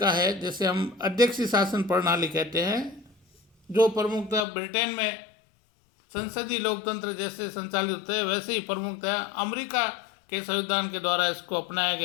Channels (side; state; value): right; drops out; at 4.5 s